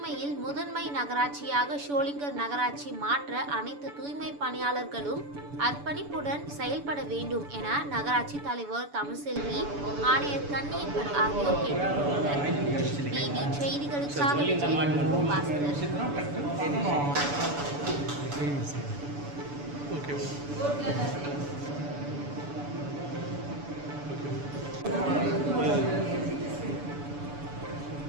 முதன்மை நகராட்சியாக ஷோலிங்கர் நகராட்சி மாற்ற அனைத்து தூய்மை பணியாளர்களும் அர்ப்பணிப்புடன் செயல்பட வேண்டும் என நகராட்சி தலைவர் தமிழ்செல்வி, ஆணையர் கன்னியப்பன் ஆகியோர் கேட்டுக்கொண்டனர். டிவி செய்திகளுக்காக பாஸ்கர்.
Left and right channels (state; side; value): late; left; 7.0 ms